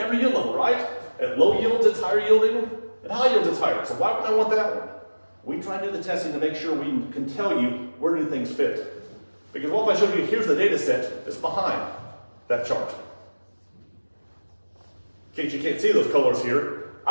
yield level, right? At low yields, it's higher yielding. At high yields, it's higher. So why would I want that one? We try to do the testing to make sure we can tell you where do things fit. Because what if I showed you, here's the data set that's behind that chart. In case you can't see those colors here,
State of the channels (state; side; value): inverted; both; correlation -1.00